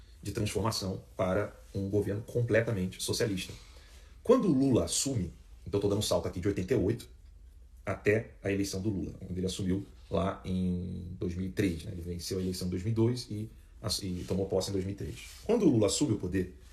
de transformação para um governo completamente socialista. Quando o Lula assume, então estou dando um salto aqui de 88 até a eleição do Lula, onde ele assumiu lá em 2003, né? Ele venceu a eleição em 2002 e tomou posse em 2003. Quando o Lula assume o poder,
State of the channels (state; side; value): identical; both; correlation 1.00